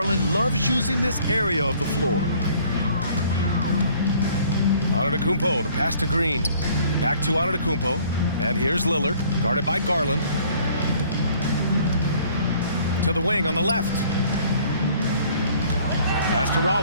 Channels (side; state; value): both; inverted; correlation -0.57